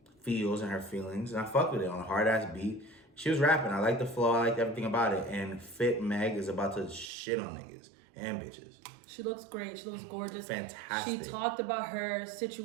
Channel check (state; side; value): drops out; left; at 7.1 s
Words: feels and her feelings. And I fucked with it on a hard ass beat. She was rapping. I liked the flow. I liked everything about it. And Fit Meg is about to shit on niggas and bitches. She looks great. She looks gorgeous. Fantastic. She talked about her